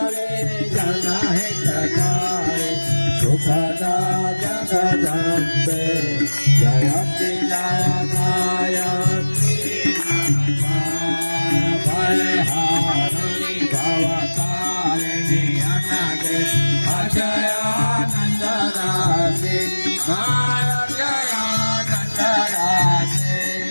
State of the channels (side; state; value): both; inverted; correlation -1.00